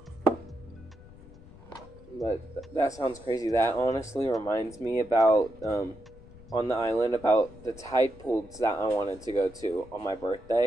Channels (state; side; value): noise; left; rumble, 20 dB below the sound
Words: But that sounds crazy. That honestly reminds me about, on the island, about the tide pools that I wanted to go to on my